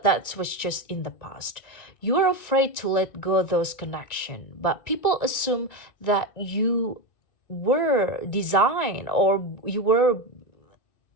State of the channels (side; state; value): right; late; 1.9 ms